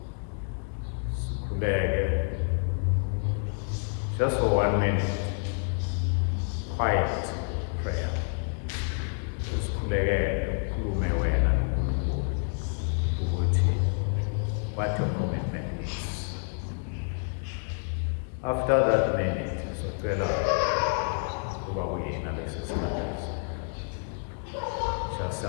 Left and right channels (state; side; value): silent; right; 59 dB below the other